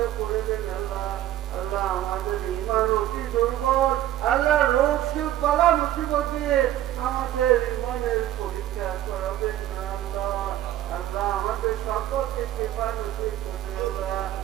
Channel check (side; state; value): left; quieter; 13.1 dB